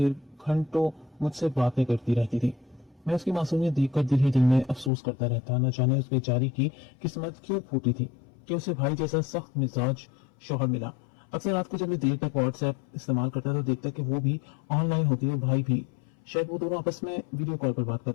घंटों मुझसे बातें करती रहती थी। मैं उसकी मासूमियत देखकर दिल ही दिल में अफसोस करता रहता। न जाने उस बेचारी की किस्मत क्यों फूटी थी कि उसे भाई जैसा सख्त मिजाज शौहर मिला। अक्सर रात को जब मैं देर तक व्हाट्सएप इस्तेमाल करता तो देखता कि वो भी ऑनलाइन होती है, भाई भी। शायद वो दोनों आपस में वीडियो कॉल पर बात कर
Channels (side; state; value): right; drops out; at 4.9 s